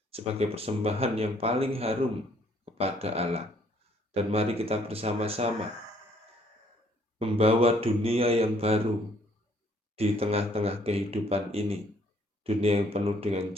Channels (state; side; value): normal; both; correlation 0.64